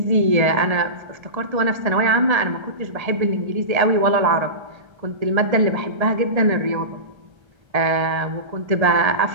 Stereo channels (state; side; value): late; left; 1.8 ms